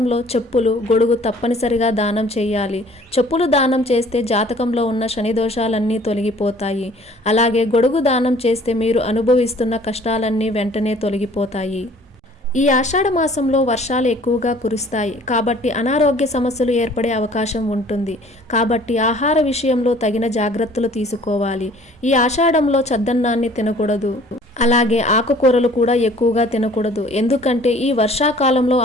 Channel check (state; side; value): normal; both; correlation 0.53